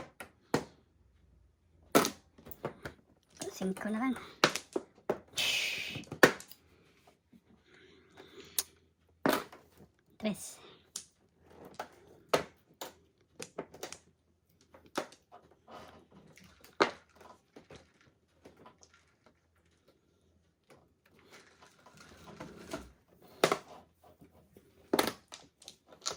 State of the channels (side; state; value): both; identical; correlation 1.00